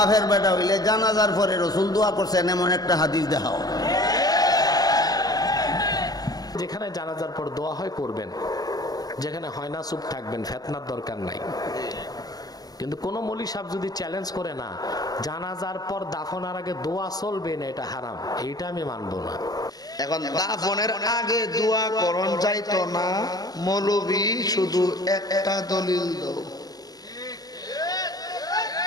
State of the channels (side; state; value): right; late; 0.19 ms